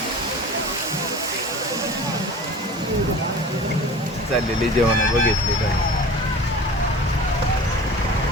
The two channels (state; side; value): normal; both; correlation 0.39